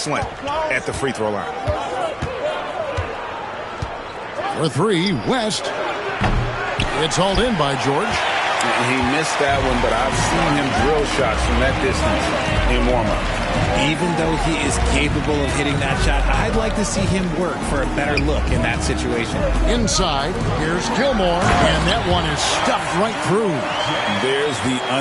at the free throw line. For 3, West. It's hauled in by George. He missed that one, but I've seen him drill shots from that distance in warm-up. Even though he is capable of hitting that shot, I'd like to see him work for a better look in that situation. Inside, here's Gilmore, and that one is stuffed right through. There's the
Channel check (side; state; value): both; identical; correlation 1.00